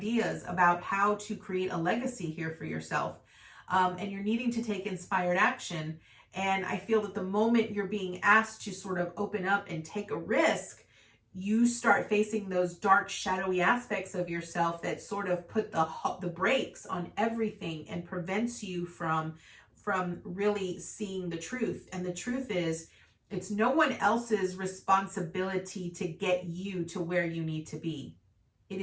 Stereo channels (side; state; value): both; identical; correlation 1.00